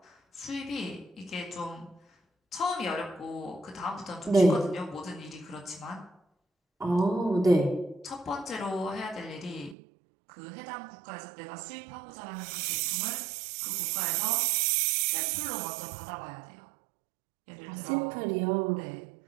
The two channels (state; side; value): drops out; left; at 9.8 s